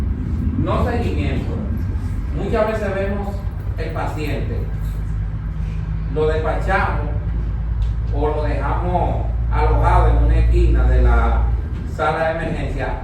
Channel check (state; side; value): identical; both; correlation 1.00